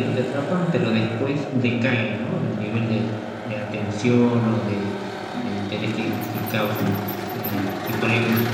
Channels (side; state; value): both; identical; correlation 1.00